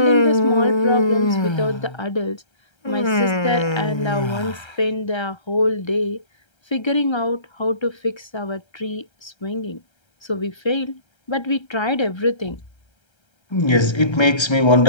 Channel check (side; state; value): right; late; 1.3 ms